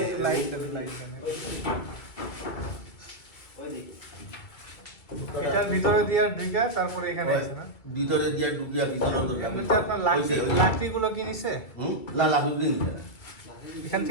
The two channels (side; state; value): right; late; 1.9 ms